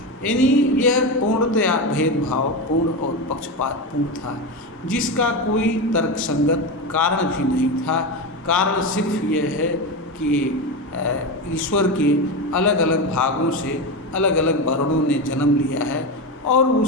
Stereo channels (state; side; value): normal; both; correlation 0.17